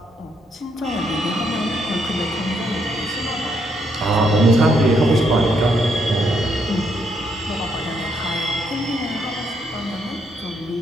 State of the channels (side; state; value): both; normal; correlation 0.75